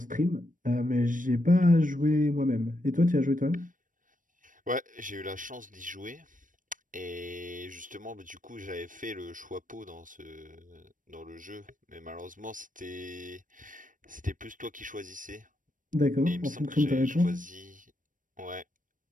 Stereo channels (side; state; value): left; late; 0.38 ms